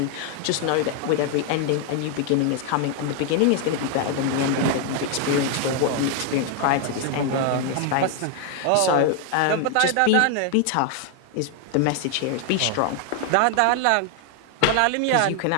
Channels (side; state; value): both; different; correlation 0.00